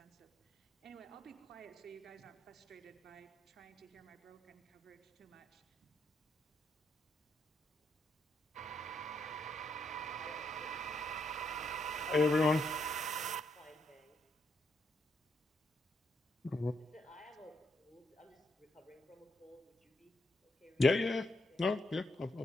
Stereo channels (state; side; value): normal; both; correlation 0.78